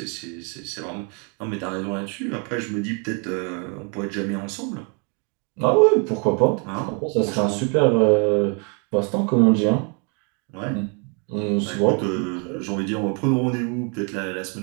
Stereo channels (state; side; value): quieter; left; 36.3 dB